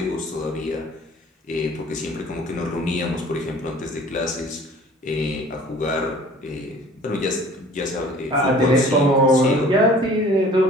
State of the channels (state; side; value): normal; both; correlation 0.49